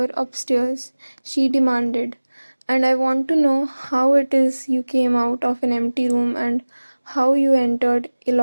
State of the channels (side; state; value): both; inverted; correlation -1.00